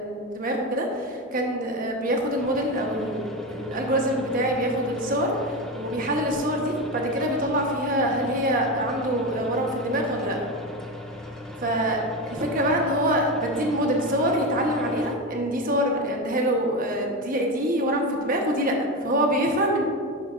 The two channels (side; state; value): both; normal; correlation 0.18